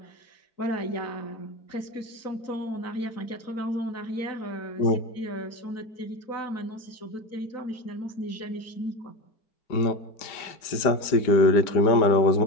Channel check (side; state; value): right; late; 5.0 ms